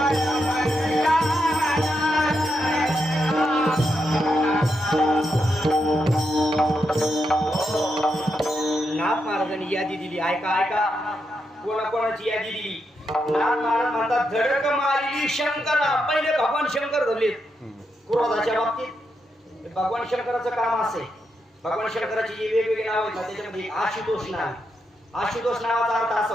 महाराजांनी यादी दिली. ऐका ऐका, कोणाकोणाची यादी दिली. नाथ महाराज म्हणतात धडक मारली शंकरा. पहिले भगवान शंकर धरलेत क्रोधाच्या बाबतीत. भगवान शंकराचं काम असे, भगवान शंकराची जी वेगवेगळी नाव आहेत ना त्याच्यामध्ये आशुतोष नाव. आशुतोष नावाचा अर्थ असा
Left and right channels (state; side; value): normal; both; correlation 0.83